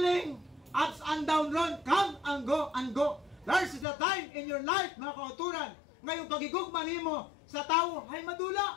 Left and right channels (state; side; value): drops out; right; at 3.9 s